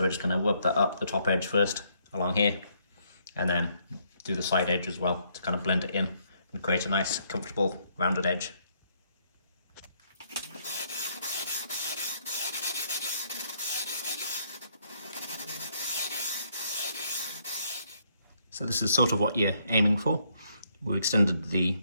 we're just going to rub that up the top edge first along here, and then do the side edge as well to kind of blend it in and create a nice, comfortable, rounded edge. So this is sort of what you're aiming for. We extended the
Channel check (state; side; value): inverted; both; correlation -0.71